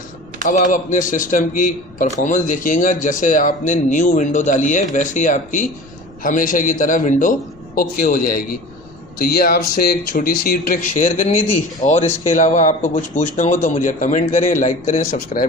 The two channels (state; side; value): noise; left; rumble, 25 dB below the sound